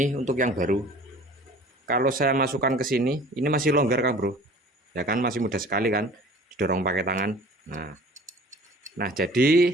untuk yang baru. Kalau saya masukkan ke sini, ini masih longgar Kang Bro. Ya kan, masih mudah sekali kan, didorong pakai tangan. Nah,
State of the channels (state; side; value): normal; both; correlation 0.47